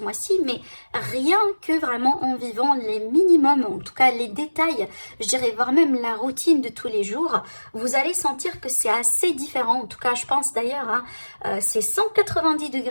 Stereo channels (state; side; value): inverted; both; correlation -1.00